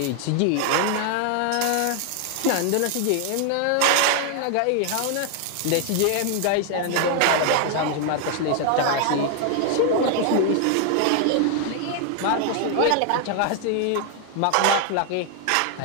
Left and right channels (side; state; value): both; different; correlation 0.00